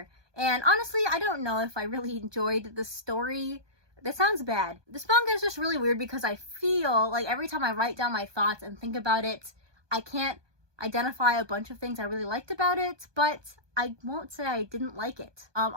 And honestly, I don't know if I really enjoyed the story. That sounds bad. This manga is just really weird because I feel like every time I write down my thoughts and think about it, I can't identify a bunch of things I really liked about it, but I won't say I didn't like it.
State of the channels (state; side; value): late; left; 1.2 ms